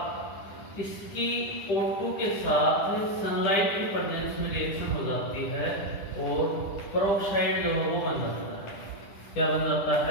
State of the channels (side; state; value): right; late; 10 ms